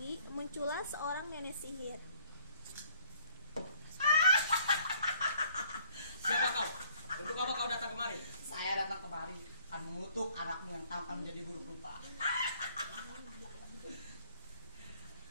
muncullah seorang nenek sihir. Siapa kau? Untuk apa kau datang kemari? Saya datang kemari akan mengutuk anakmu yang tampan menjadi buruk rupa.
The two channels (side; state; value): both; inverted; correlation -0.61